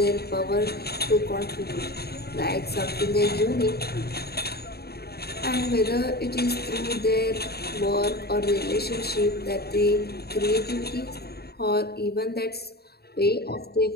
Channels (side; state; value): right; late; 0.46 ms